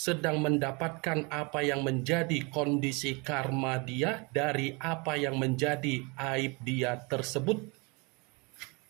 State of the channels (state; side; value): quieter; left; 29.6 dB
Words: mendapatkan apa yang menjadi kondisi karma dia dari apa yang menjadi aib dia tersebut.